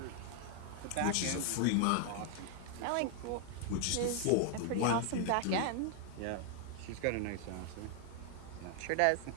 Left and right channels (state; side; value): different; both; correlation 0.00